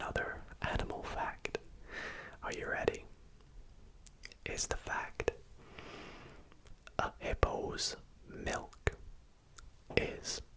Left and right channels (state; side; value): identical; both; correlation 1.00